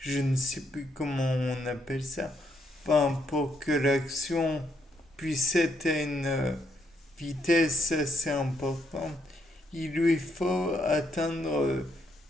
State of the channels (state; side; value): normal; both; correlation 0.74